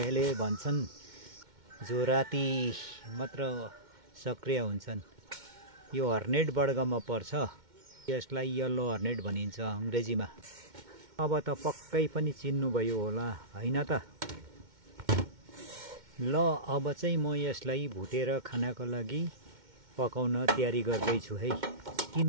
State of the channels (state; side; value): late; left; 2.1 ms